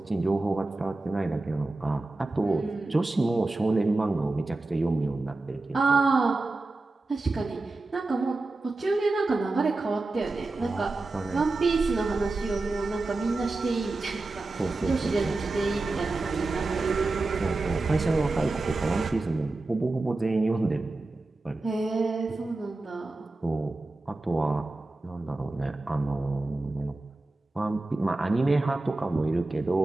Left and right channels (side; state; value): left; quieter; 3.1 dB